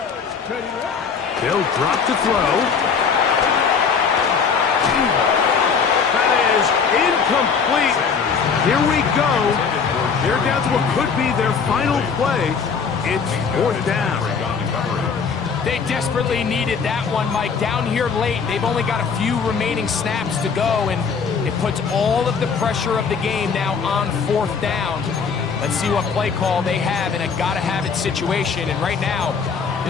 They'll drop to throw. That is incomplete. Here we go. They're down to what could be their final play. It's 4th down. They desperately needed that one, Mike. Down here late, they've only got a few remaining snaps to go, and it puts all of the pressure of the game now on 4th down. Let's see what play call they have in a gotta-have-it situation. And right now,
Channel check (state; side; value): quieter; right; 5.9 dB